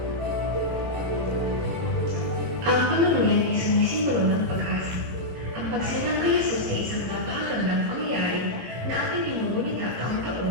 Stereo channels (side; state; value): left; late; 18 ms